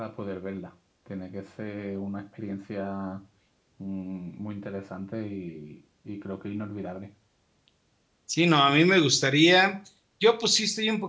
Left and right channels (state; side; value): identical; both; correlation 1.00